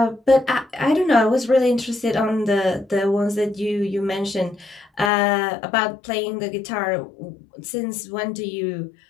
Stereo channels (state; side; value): drops out; right; at 5.1 s